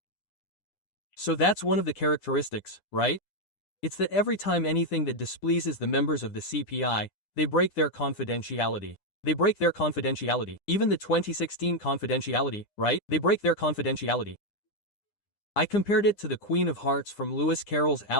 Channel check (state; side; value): late; right; 9.9 ms